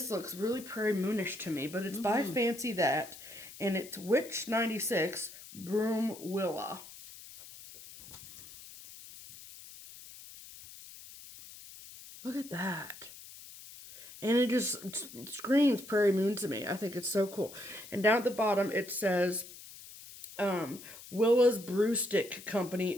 looks really Prairie Moonish to me, but it's by Fancy That. And it's Witch 96, Broom Willa. Look at that. And it just screams Prairie Moon to me. I think it's so cool. And down at the bottom it says, Willa's Brew Stick Company,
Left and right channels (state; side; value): noise; left; hiss, 16 dB below the sound